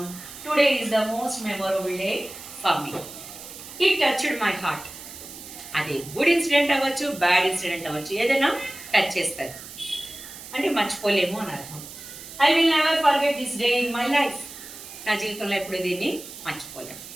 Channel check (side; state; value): right; noise; hiss, 14 dB below the sound